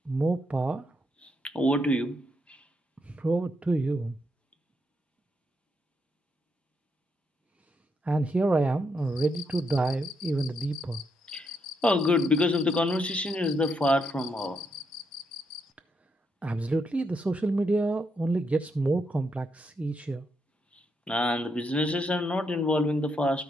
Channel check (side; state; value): both; normal; correlation 0.79